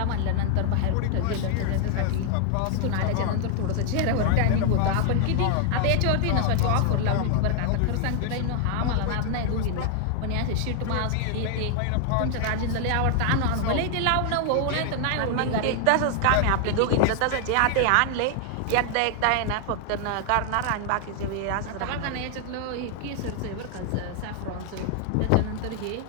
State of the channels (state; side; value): different; both; correlation 0.00